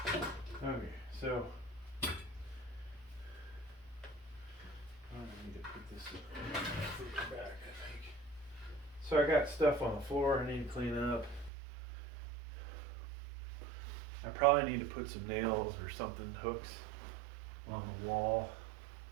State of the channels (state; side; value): drops out; left; at 11.5 s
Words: enough. Okay, so I need to put this further back, I think. So I got stuff on the floor I need to clean up. I probably need to put some nails or something, hooks on the wall